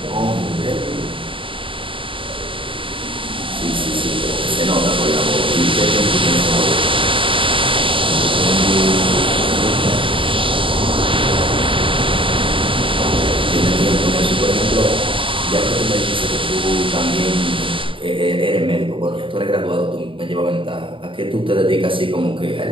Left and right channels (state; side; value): late; left; 0.25 ms